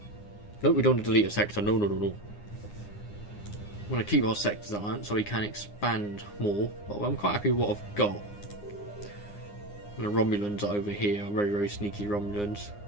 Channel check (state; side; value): late; right; 9.7 ms